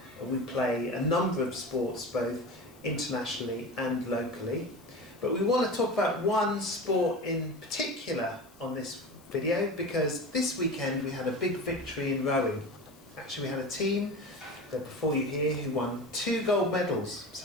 We play a number of sports both internationally and locally. But we want to talk about one sport in particular on this video because this weekend we had a big victory in rowing. Actually we had a team that before you here who won 2 gold medals.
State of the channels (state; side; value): noise; left; hiss, 27 dB below the sound